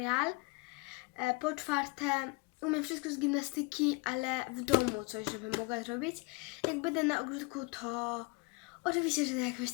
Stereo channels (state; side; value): quieter; right; 27.7 dB